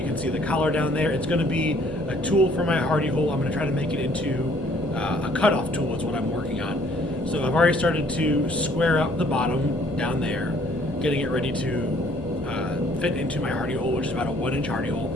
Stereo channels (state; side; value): noise; left; hum, 17 dB below the sound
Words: can see the collar down there. It's going to be a tool for my hardy hole. I'm going to try to make it into a cutoff tool is what I'm working on. So I've already started to square up the bottom down there, getting it ready to fit into my hardy hole, which is about a 1-inch hardy hole.